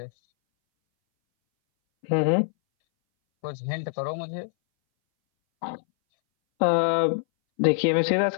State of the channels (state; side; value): silent; right; 61 dB below the other